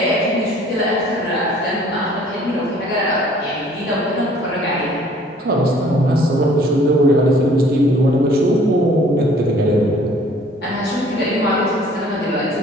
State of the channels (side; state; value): both; normal; correlation 0.55